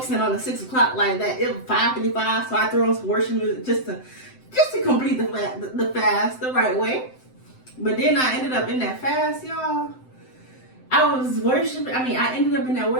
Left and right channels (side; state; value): right; late; 7.8 ms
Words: on the 6 o'clock like that. It was 5:55, so I threw on some worship music just to complete the fast the right way. But then I ended up in that fast, y'all. I was worshiping. I ended up in that